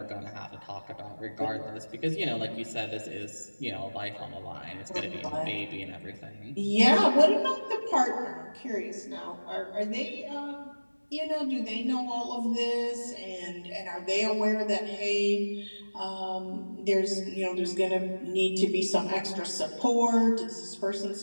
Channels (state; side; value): inverted; both; correlation -1.00